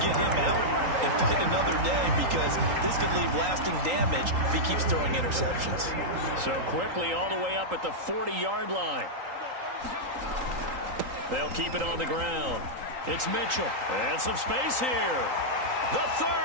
get him out and fight another day, because this could leave lasting damage if he keeps throwing interceptions. So quickly all the way up at the 40-yard line. They'll keep it on the ground. It's Mitchell. And some space here. The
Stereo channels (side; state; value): left; late; 3.8 ms